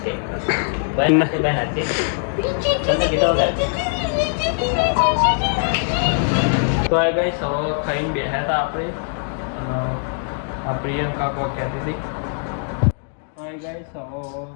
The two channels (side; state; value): right; silent; digital silence